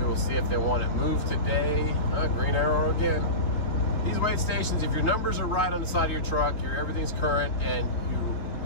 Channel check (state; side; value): late; right; 4.0 ms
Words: will see if they want it moved today. Green arrow again. These weight stations, if your numbers are right on the side of your truck, everything's current, and you